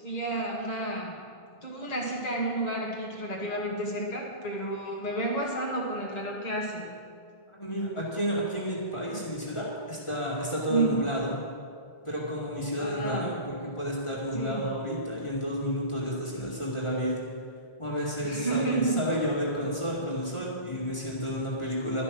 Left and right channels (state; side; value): late; right; 1.4 ms